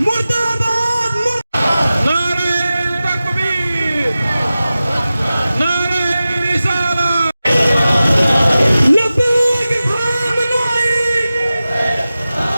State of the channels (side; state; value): both; inverted; correlation -0.95